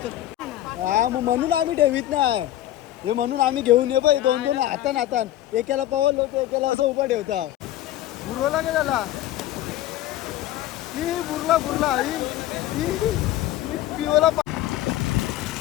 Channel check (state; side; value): quieter; right; 13.7 dB